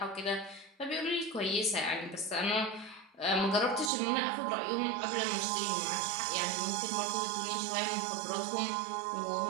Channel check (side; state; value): left; drops out; at 3.9 s